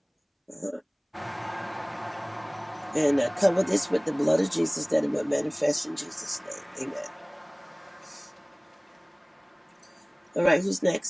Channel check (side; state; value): both; identical; correlation 1.00